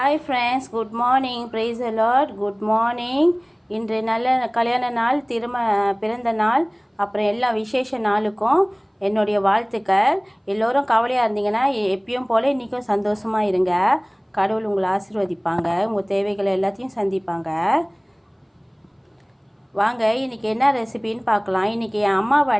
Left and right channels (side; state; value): both; identical; correlation 1.00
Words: friends, good morning. Praise the lord. Good morning. இன்று நல்ல கல்யாண நாள், பிறந்த நாள், அப்புறம் எல்லா விசேஷ நாளுக்கும் என்னுடைய வாழ்த்துக்கள். எல்லோரும் கவலையாக இருந்தீங்கன்னா எப்பயும் போல் இன்றைக்கும் சந்தோஷமாக இருங்க. கடவுள் உங்களை ஆசீர்வதிப்பாங்க, உங்கள் தேவைகளை எல்லாத்தையும் சந்திப்பாங்க. வாங்க இன்றைக்கி என்ன ரெசிபின்னு பார்க்கலாம். இன்றைக்கி என்